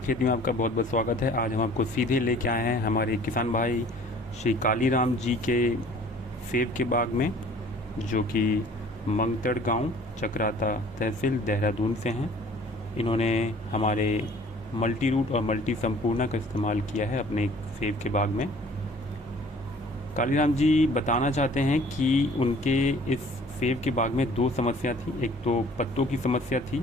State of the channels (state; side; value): normal; both; correlation 0.51